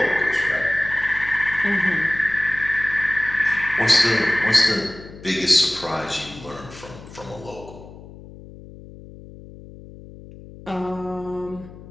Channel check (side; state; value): left; noise; hum, 17 dB below the sound